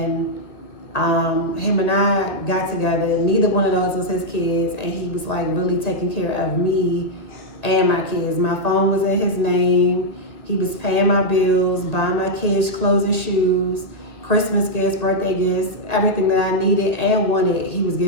him and I got together. Neither one of those was his kids, and he was like really taking care of me and my kids. My phone was in his name. He was paying my bills, buying my kids clothes and shoes, Christmas gifts, birthday gifts, everything that I needed and wanted, he was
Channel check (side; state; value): right; late; 2.1 ms